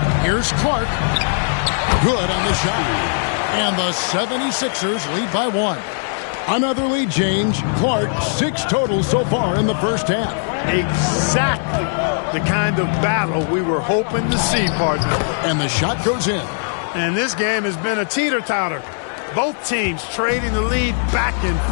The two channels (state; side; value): silent; right; digital silence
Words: Here's Clark. Good on the shot. And the 76ers lead by 1. Another lead change. Clark, 6 total so far in the first half. Exactly the kind of battle we were hoping to see, partner. And the shot goes in. And this game has been a teeter-totter. Both teams trading the lead, back and